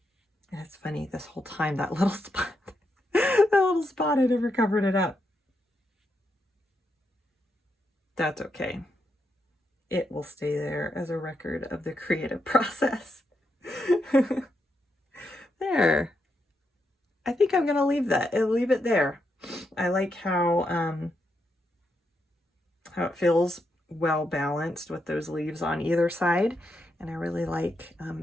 And it's funny, this whole time, that little spot, that little spot, I never covered it up. That's okay. It will stay there as a record of the creative process. There. I think I'm gonna leave it there. I like how it feels well balanced with those leaves on either side. And I really like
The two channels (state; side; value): normal; both; correlation 0.82